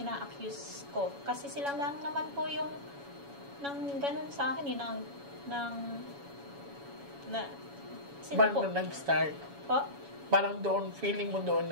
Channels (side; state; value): left; late; 7.1 ms